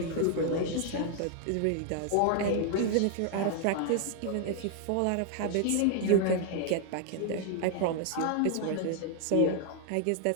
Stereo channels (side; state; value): both; different; correlation 0.00